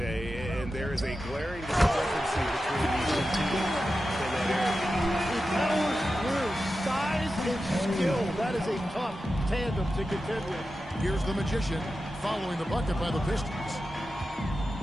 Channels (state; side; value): normal; both; correlation 0.92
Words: and there is a glaring discrepancy between these two teams in that area. He powers through size and skill. That is a tough tandem to contend with. Here's the Magician following the bucket by the Pistons.